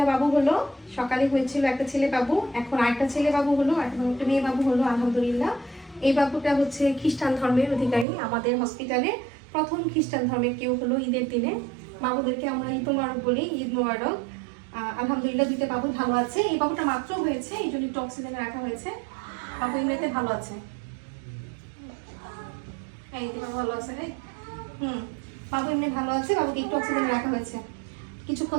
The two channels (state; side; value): drops out; left; at 8.1 s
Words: বাবু হলো। সকালে হয়েছিল একটা ছেলে বাবু, এখন আরেকটা ছেলে বাবু হলো, এখন একটা মেয়ে বাবু হলো আলহামদুলিল্লাহ। এই বাবুটা হচ্ছে খ্রিস্টান ধর্মের অধিকারী। আমাদের হসপিটালে প্রথম খ্রিস্টান ধর্মের কেউ হলো ঈদের দিনে। বাবুদেরকে আমরা ঈদ মোবারক বলি, ঈদ মোবারক। আলহামদুলিল্লাহ দুইটা বাবু ভালো আছে। এই বাবুটা মাত্র হয়েছে, এই জন্য একটু অক্সিজেনে রাখা হয়েছে। বাবু এমনিতে ভালো আছে। এই বাবু ভালো আছে রে। বাবু এমনি ভালো আছে, বাবুকে একটু অক্সিজেনে রাখা হয়েছে,